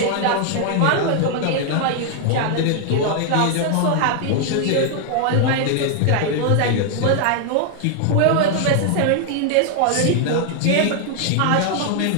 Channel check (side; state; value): both; different; correlation 0.00